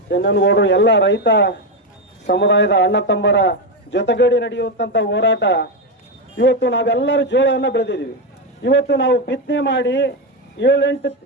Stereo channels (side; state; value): both; normal; correlation 0.09